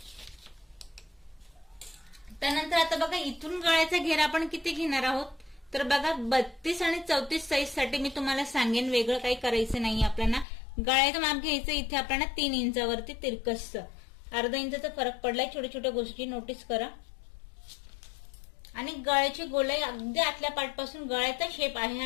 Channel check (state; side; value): drops out; right; at 10.5 s